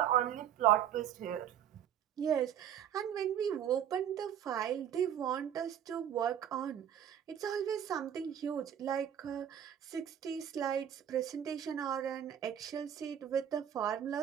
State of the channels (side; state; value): left; quieter; 9.6 dB